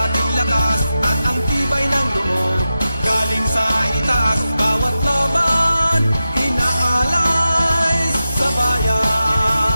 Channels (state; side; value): inverted; both; correlation -0.92